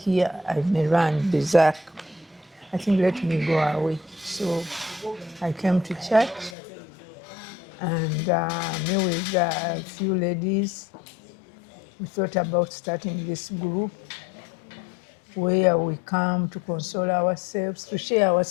I may run berserk. I think let me go away. So I came to church and me with a few ladies, we thought about starting this group where we come to console ourselves, to share our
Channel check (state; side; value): drops out; right; at 6.6 s